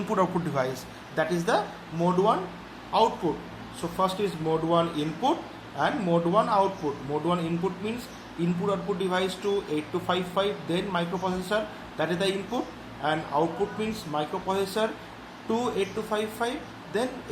output device. That is the mode 1 output. So first is mode 1 input and mode 1 output. Mode 1 input means input output device to 8255, then microprocessor, that is the input, and output means microprocessor to 8255, then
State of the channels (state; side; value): identical; both; correlation 1.00